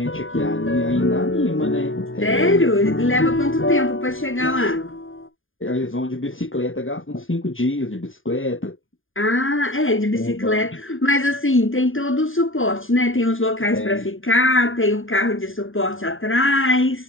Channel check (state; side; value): late; right; 0.59 ms